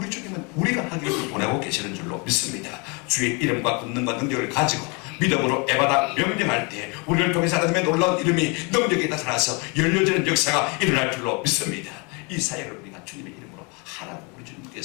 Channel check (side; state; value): right; quieter; 31.2 dB